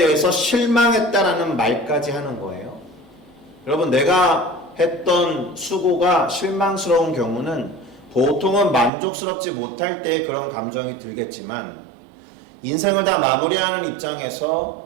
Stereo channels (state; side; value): drops out; left; at 8.9 s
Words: 실망했다라는 말까지 하는 거예요. 여러분, 내가 했던 수고가 실망스러운 경우는 보통은 만족스럽지 못할 때 그런 감정이 들겠지만, 인생을 다 마무리하는 입장에서